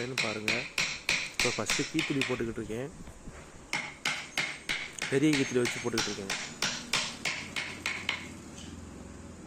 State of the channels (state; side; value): identical; both; correlation 1.00